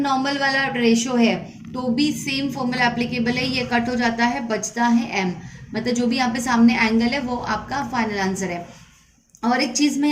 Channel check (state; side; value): identical; both; correlation 1.00